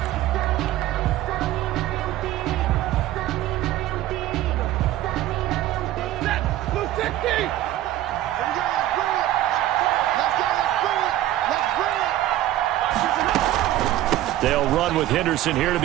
They'll run with Henderson here to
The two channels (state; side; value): quieter; left; 14.1 dB